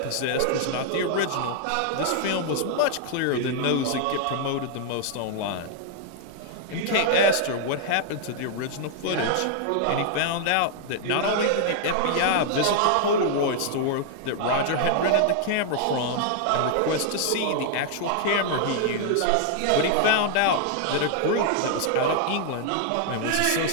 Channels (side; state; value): both; different; correlation 0.00